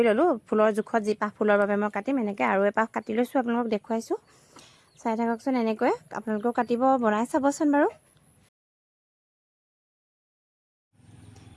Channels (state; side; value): identical; both; correlation 1.00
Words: ল'লোঁ। ফুলৰ জোখত যি পাহ ফুলৰ বাবে মই কাটিম এনেকৈ আৰু এপাহ কাটি লৈছোঁ, আপোনালোকক দেখুৱাইছোঁ। চাই থাককচোন, এনেকৈ আপোনালোকেও কাটিব, বনাই চাবচোন বাৰু।